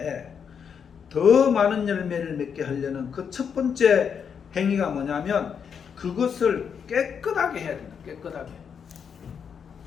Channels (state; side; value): quieter; right; 7.1 dB